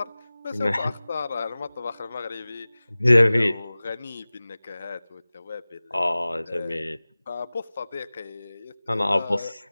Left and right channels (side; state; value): both; inverted; correlation -0.98